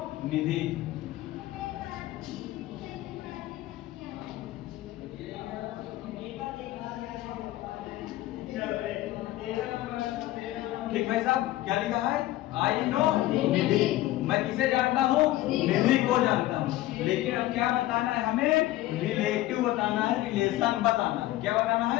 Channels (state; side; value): quieter; right; 16.0 dB